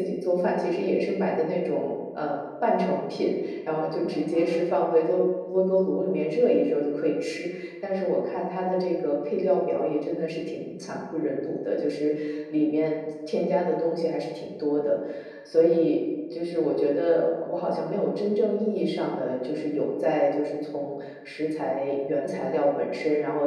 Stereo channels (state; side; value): identical; both; correlation 1.00